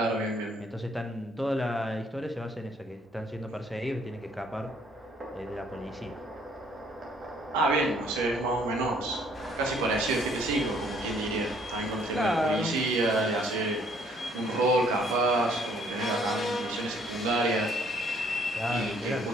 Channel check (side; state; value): both; normal; correlation 0.63